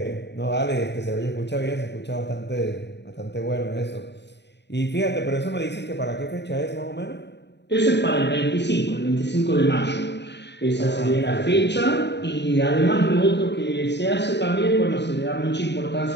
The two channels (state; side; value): late; right; 0.50 ms